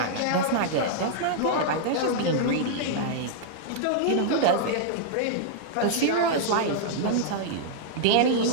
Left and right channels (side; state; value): both; different; correlation -0.01